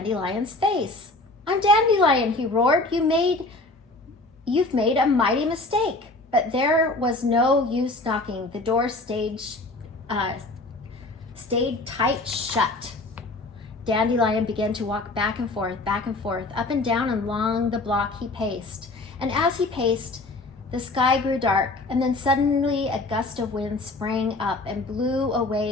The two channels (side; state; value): right; quieter; 3.0 dB